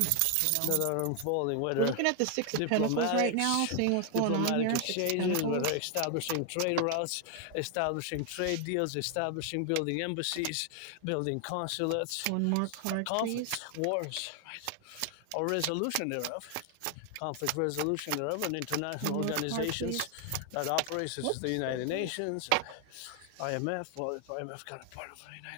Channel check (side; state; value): both; different; correlation 0.00